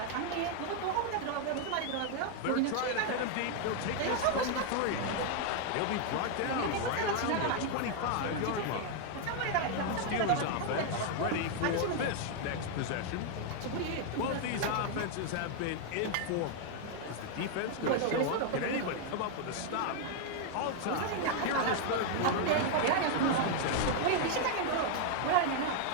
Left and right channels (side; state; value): both; different; correlation 0.00